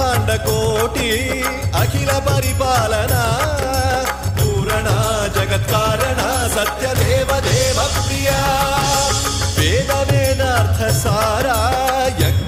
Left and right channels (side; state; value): both; identical; correlation 1.00